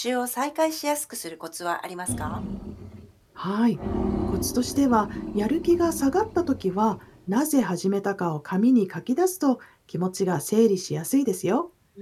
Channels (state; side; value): identical; both; correlation 1.00